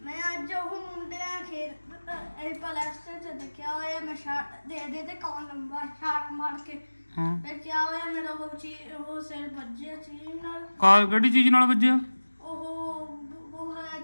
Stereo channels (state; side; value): inverted; both; correlation -1.00